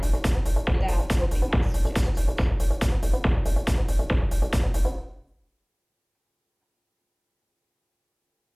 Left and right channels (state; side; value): identical; both; correlation 1.00